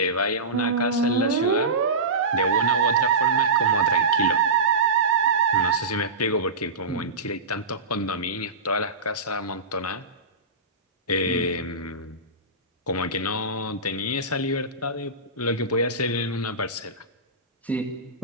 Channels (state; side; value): quieter; left; 3.1 dB